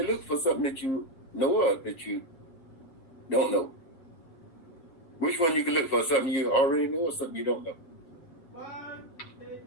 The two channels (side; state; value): right; late; 7.9 ms